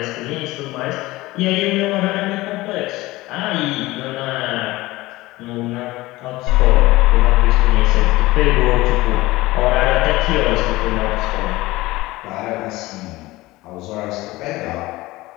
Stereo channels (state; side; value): quieter; right; 19.3 dB